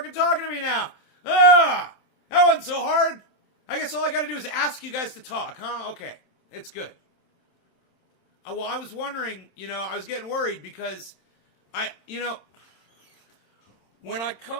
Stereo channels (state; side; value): late; right; 27 ms